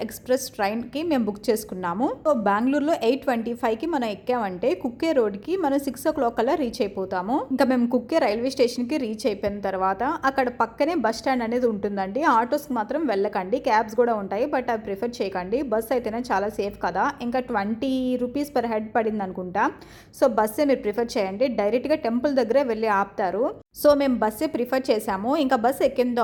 ఎక్స్ప్రెస్ ట్రైన్కి మేము బుక్ చేసుకున్నాము. సో బెంగళూరులో 8:25కి మనం ఎక్కామంటే కుక్కే రోడ్కి మనం 6 o'clock కల్లా రీచ్ అయిపోతాము. ఇంకా మేము కుక్కే రైల్వే స్టేషన్కి రీచ్ అయిపోయిన తర్వాత అక్కడ పక్కనే బస్ స్టాండ్ అనేది ఉంటుందండి. ఆటోస్కి మాత్రం వెళ్ళకండి, క్యాబ్స్ కూడా ఉంటాయి, బట్ అవి ప్రిఫర్ చేయకండి. బస్ అయితేనే చాలా సేఫ్ కదా. ఇంకా 20 రూపీస్ పర్ హెడ్ పడింది అనుకుంటా. సో బస్సే మీరు ప్రిఫర్ చేయండి. డైరెక్ట్గా టెంపుల్ దగ్గరే వెళ్ళి ఆపుతారు. సో మేము బస్సే ప్రిఫర్ చేసాము. ఇంకా బస్ ఎక్కిన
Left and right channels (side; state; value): both; identical; correlation 1.00